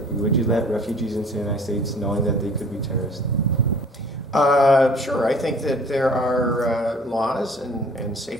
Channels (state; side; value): normal; both; correlation 0.51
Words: let refugees into the United States knowing that they could be terrorists? Sure. I think that there are laws and